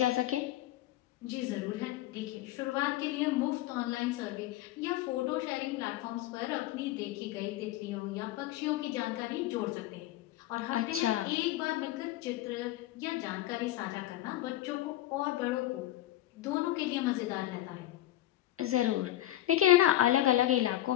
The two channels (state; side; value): quieter; right; 14.3 dB